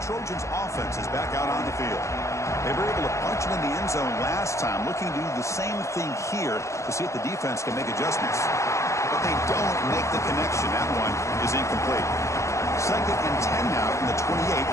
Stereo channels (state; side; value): late; right; 0.14 ms